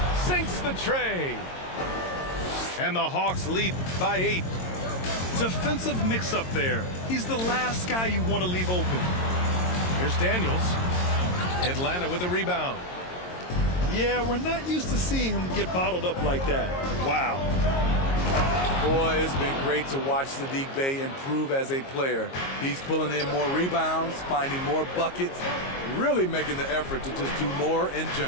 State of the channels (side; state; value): right; late; 22 ms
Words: Sinks the tray. And the Hawks lead by 8. Defensive mix-up there. He's the last guy you want to leave open. Here's Daniels. Atlanta with a rebound. Yeah, we're not used to seeing him get bottled up like that. Wow. Boy, it's been great to watch Saddiq Bey improve as a player. He's pulling in more rebounds, finding more buckets, really making the effort to just do more in